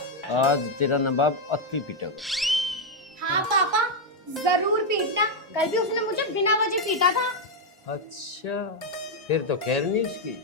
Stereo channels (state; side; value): normal; both; correlation 0.00